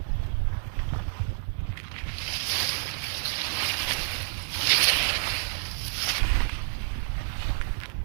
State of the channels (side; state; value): left; silent; digital silence